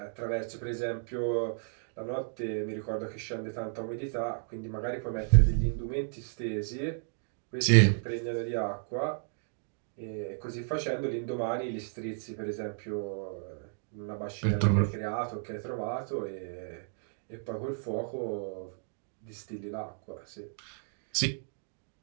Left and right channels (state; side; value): silent; left; digital silence